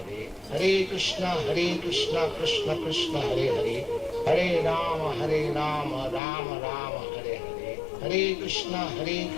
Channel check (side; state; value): right; drops out; at 6.2 s